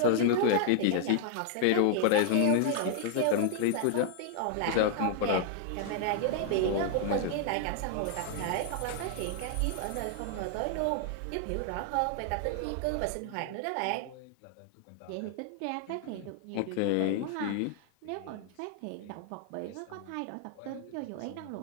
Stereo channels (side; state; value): both; different; correlation 0.00